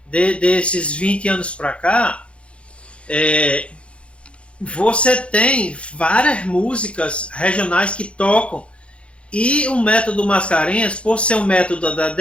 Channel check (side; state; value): right; late; 0.060 ms